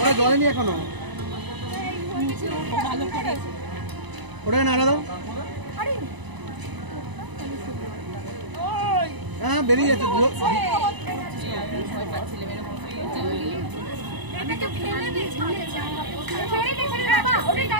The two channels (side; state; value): left; late; 1.0 ms